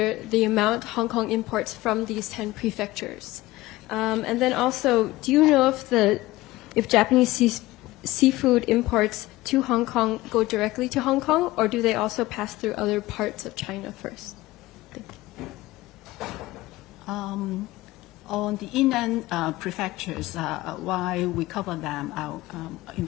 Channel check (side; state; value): right; quieter; 18.3 dB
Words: the amount Hong Kong imports from these 10 prefectures? And then also, do you know if Japanese seafood imports to Hong Kong go directly to Hong Kong, or do they also pass through other parts of China first? On the inland prefectures, why we cover them, I'll